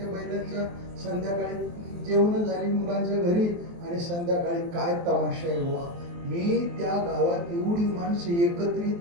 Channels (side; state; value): left; late; 23 ms